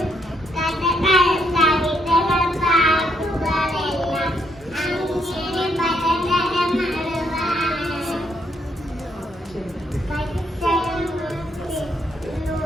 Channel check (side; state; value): both; normal; correlation 0.74